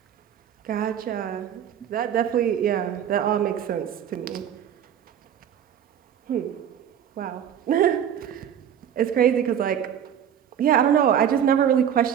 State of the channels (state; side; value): quieter; left; 9.2 dB